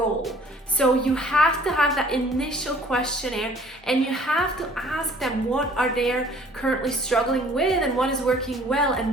So you have to have that initial questionnaire and you have to ask them what are they currently struggling with and what is working well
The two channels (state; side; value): normal; both; correlation 0.54